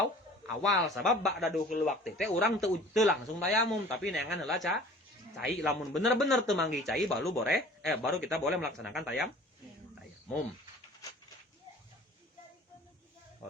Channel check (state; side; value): normal; both; correlation 0.47